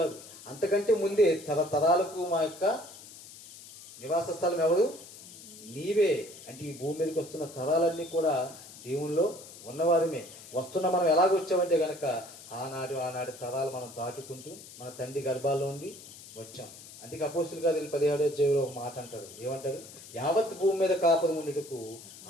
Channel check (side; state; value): left; noise; hiss, 17 dB below the sound